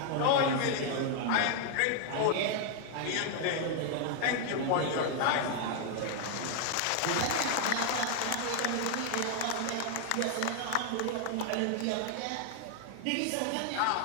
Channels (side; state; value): both; different; correlation 0.00